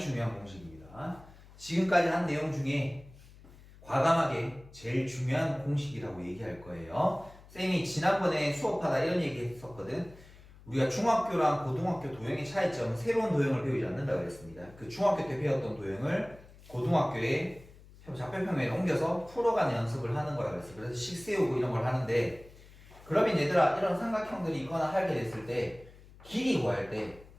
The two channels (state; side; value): noise; left; hum, 22 dB below the sound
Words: 공식입니다. 지금까지 한 내용 중에 과감하게 제일 중요한 공식이라고 얘기할 거예요. 쌤이 지난번에 수업하다 이런 얘기 했었거든. 우리가 중학교랑 고등학교 도형의 차이점은 새로운 도형을 배우지 않는다고 그랬습니다. 그 중학교 때 배웠던 도형을 고등학교에 좌표평면에 옮겨서 풀어가는 연습을 하는 거라고 그랬어요. 그래서 식 세우고 이런 걸 하는데, 그러면 얘들아 이런 삼각형들이 있거나 하게 됐을 때 길이 구할 때